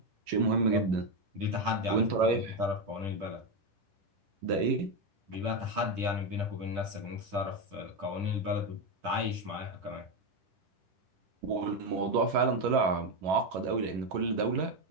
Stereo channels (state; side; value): late; left; 10 ms